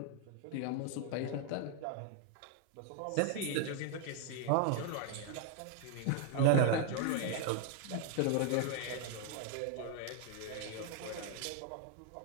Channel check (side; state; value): both; different; correlation 0.00